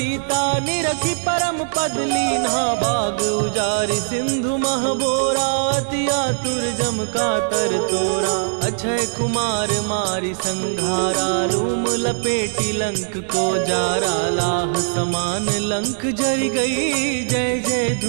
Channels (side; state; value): left; silent; digital silence